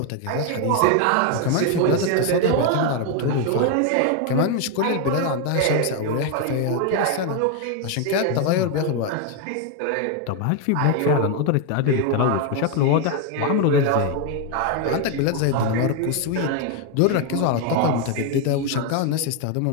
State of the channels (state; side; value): different; both; correlation 0.01